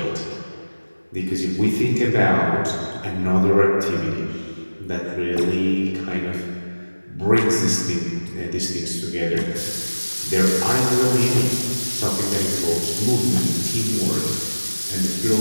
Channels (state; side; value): inverted; both; correlation -1.00